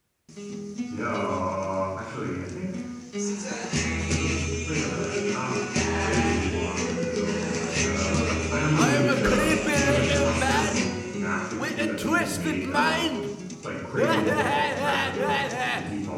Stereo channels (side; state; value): both; identical; correlation 1.00